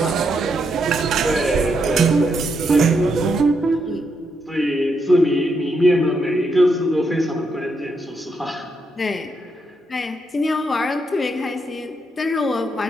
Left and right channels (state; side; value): normal; both; correlation 0.80